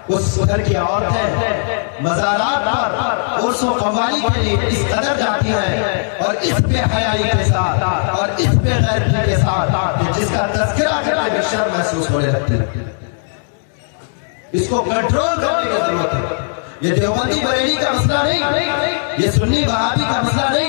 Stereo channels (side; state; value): right; silent; digital silence